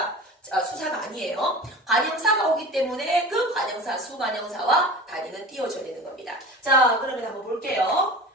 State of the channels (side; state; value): both; normal; correlation 0.35